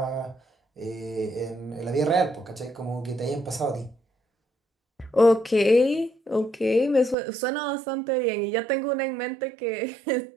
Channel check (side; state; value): left; drops out; at 7.2 s